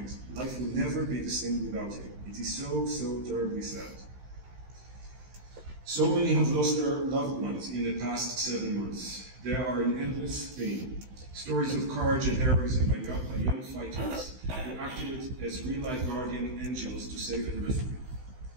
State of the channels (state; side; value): late; left; 16 ms